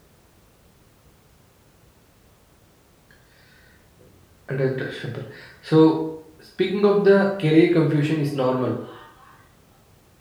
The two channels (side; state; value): both; identical; correlation 1.00